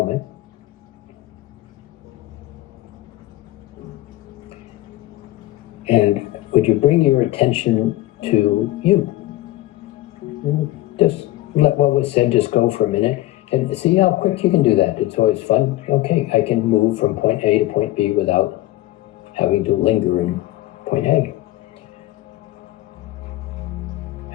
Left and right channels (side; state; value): right; quieter; 16.5 dB